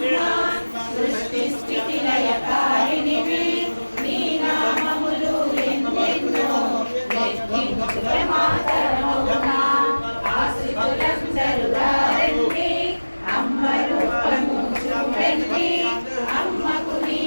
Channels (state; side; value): inverted; both; correlation -1.00